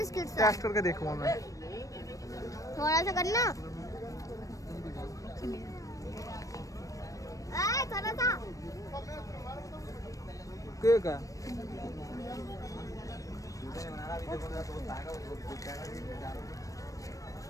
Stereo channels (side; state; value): right; late; 0.16 ms